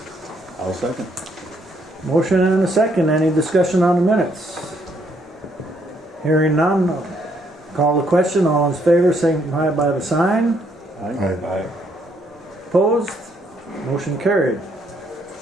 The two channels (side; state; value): both; normal; correlation 0.71